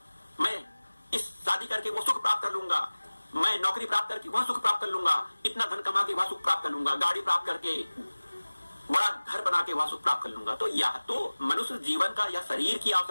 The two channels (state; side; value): inverted; both; correlation -1.00